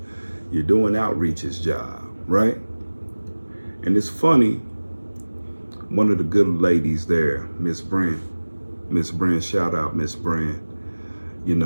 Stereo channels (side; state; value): both; inverted; correlation -1.00